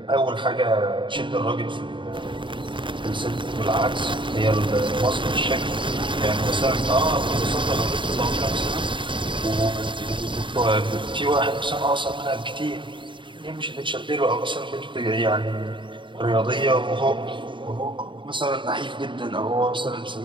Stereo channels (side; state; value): left; late; 0.24 ms